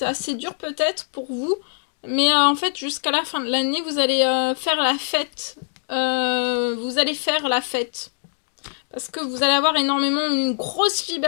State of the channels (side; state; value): right; silent; digital silence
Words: assez dur peut-être pour vous, mais en fait, jusqu'à la fin de l'année, vous allez faire la fête. Vous allez faire la fête. Parce que vous allez avoir une grosse